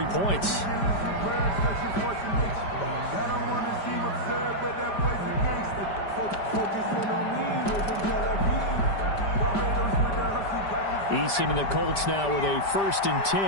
points. Eason and the Colts now with a 1st and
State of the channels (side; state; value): right; late; 5.0 ms